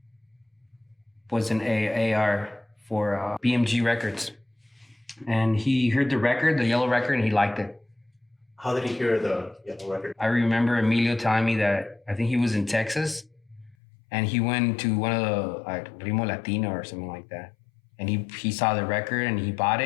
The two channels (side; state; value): right; drops out; at 13.8 s